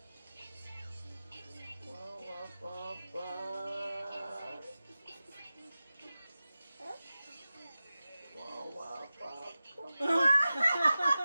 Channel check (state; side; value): inverted; both; correlation -0.94